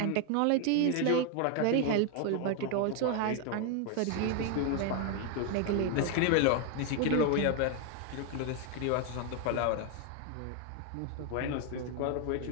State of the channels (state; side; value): different; both; correlation 0.01